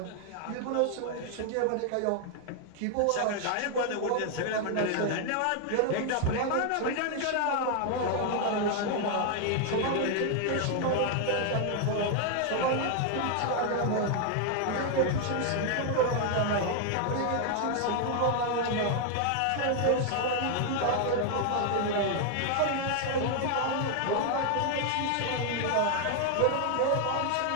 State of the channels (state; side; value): different; both; correlation 0.00